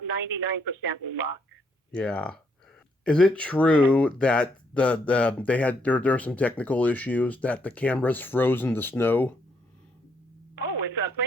99% luck. Yeah. Is it true that they had there are some technical issues that the cameras froze in the snow? Oh, with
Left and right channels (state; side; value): normal; both; correlation 0.73